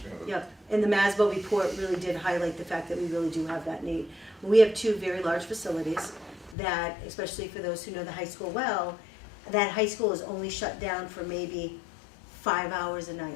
Yep, and the MASBO report really did highlight the fact that we really do have that need. We have two very large facilities that, especially for those who know the high school well, that high school is only shut down for maybe 5 hours a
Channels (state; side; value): drops out; right; at 6.6 s